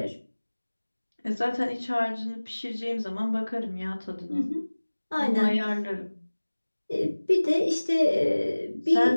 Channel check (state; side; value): inverted; both; correlation -1.00